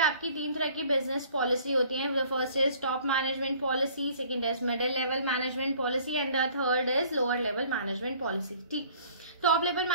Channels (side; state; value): both; inverted; correlation -0.54